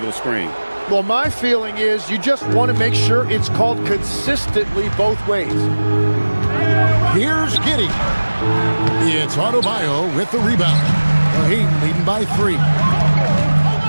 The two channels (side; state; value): both; inverted; correlation -1.00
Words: screen. Well, my feeling is you just want to make sure it's called consistently both ways. Here's Giddey. It's Adebayo with the rebound. The Heat leading by 3.